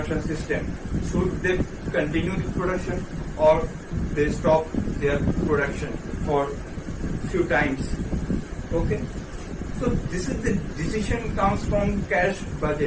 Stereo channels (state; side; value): identical; both; correlation 1.00